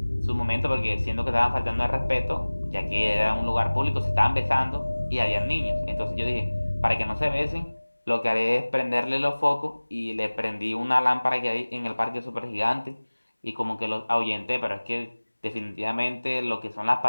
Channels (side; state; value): both; inverted; correlation -1.00